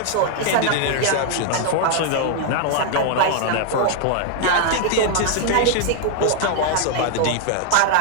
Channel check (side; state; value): both; different; correlation 0.00